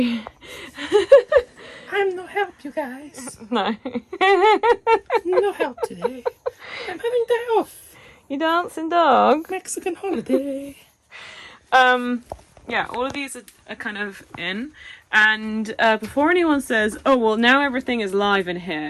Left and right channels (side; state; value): both; identical; correlation 1.00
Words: I'm no help, you guys. No. No help today. I'm having day off. You dancing dog? Mexican holiday. Yeah, all of these are kind of in. And before anyone says, oh, well, now everything is live in